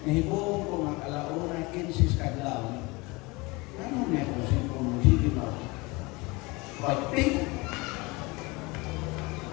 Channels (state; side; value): quieter; right; 24.9 dB